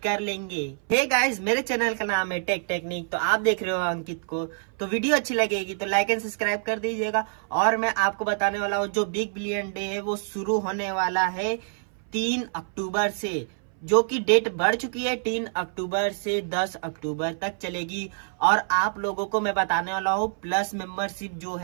कर लेंगे। हे गाइस, मेरे चैनल का नाम है टेक टेक्निक, तो आप देख रहे हो अंकित को। तो वीडियो अच्छी लगेगी तो लाइक एंड सब्सक्राइब कर दीजिएगा। और मैं आपको बताने वाला हूँ जो बिग बिलियन डे है वो शुरू होने वाला है 3 अक्टूबर से, जो कि डेट बढ़ चुकी है। 3 अक्टूबर से 10 अक्टूबर तक चलेगी। और आप लोगों को मैं बताने वाला हूँ प्लस मेंबरशिप जो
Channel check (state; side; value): silent; left; 59 dB below the other